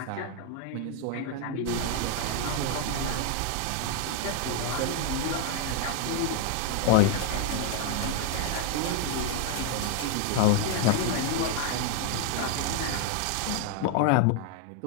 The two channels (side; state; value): both; different; correlation 0.00